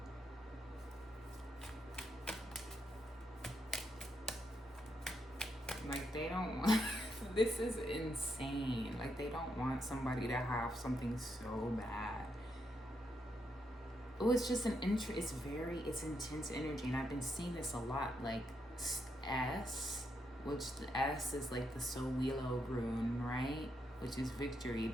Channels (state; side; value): normal; both; correlation 0.80